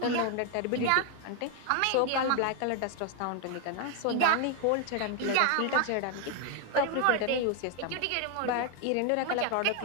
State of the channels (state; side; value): different; both; correlation 0.00